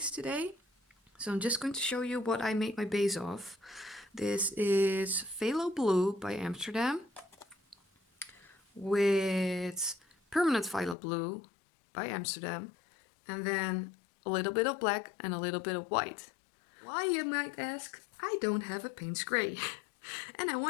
today. So I'm just going to show you what I made my base of. This is Phalo Blue by Amsterdam with permanent Phalo Blue by Amsterdam, and then a little bit of black and a little bit of white. Why, you might ask? I don't have a paint spray and I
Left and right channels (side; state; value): right; drops out; at 11.0 s